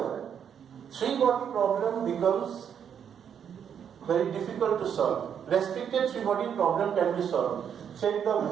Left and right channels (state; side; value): quieter; left; 8.2 dB